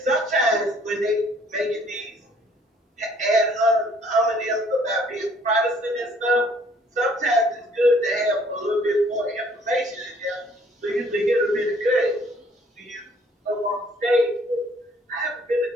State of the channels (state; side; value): normal; both; correlation 0.60